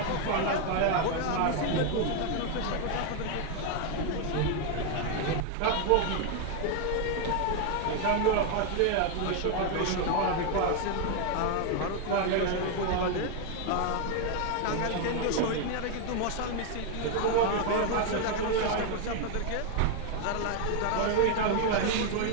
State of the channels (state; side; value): different; both; correlation 0.01